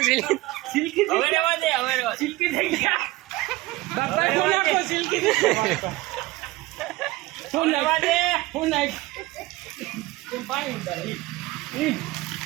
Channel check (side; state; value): left; quieter; 19.3 dB